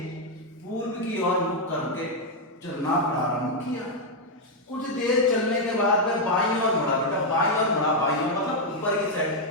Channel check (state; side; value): normal; both; correlation 0.00